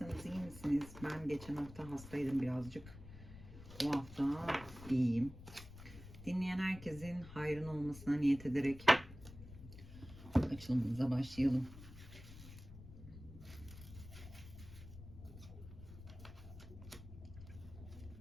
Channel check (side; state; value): left; noise; rumble, 15 dB below the sound